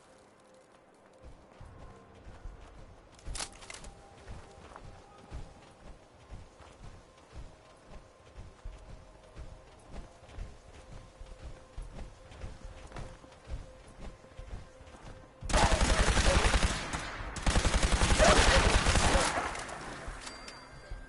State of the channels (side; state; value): both; identical; correlation 1.00